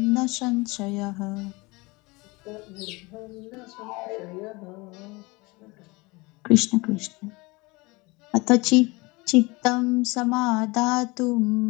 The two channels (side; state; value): right; quieter; 24.7 dB